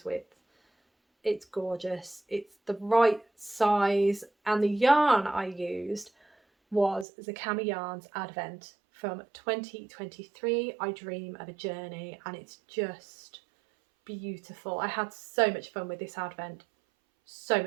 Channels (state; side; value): drops out; left; at 7.1 s